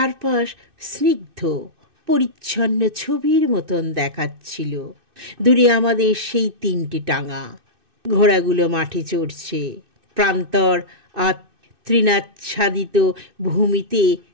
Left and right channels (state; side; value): late; left; 2.6 ms